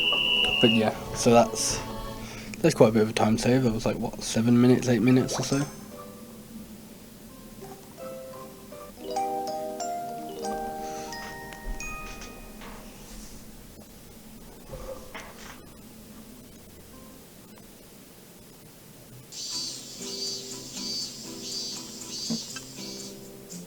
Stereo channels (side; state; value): both; identical; correlation 1.00